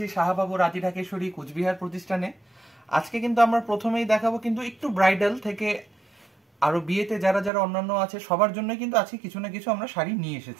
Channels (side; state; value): left; drops out; at 7.5 s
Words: শাহবাবুর আদিরাগেশ্বরী কুচবিহার প্রতিষ্ঠানে। আজকে কিন্তু আমরা প্রথমেই দেখাবো কিন্তু একটু ব্রাইডাল থেকে আরো বিয়েতে যারা যারা অন্যান্য আছে সবার জন্য কিন্তু আজকে কিছু না কিছু আমরা শাড়ি নিয়ে